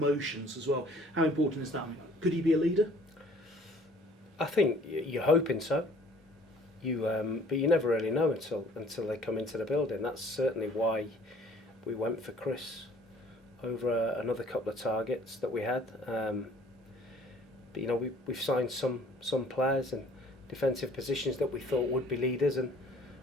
as well. How important is that? Could he be a leader? I think you're hoping so. But you never really know until they come into the building. That's certainly why we went for Chris over another couple of targets that we had. But we've signed some players in defensive positions that we thought would be leaders, and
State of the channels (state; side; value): normal; both; correlation 0.54